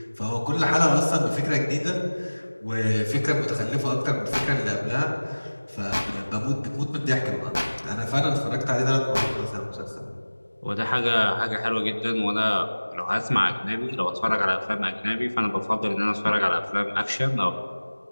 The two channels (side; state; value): both; inverted; correlation -1.00